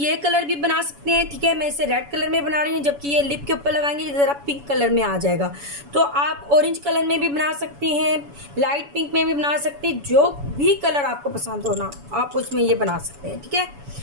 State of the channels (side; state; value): left; late; 7.0 ms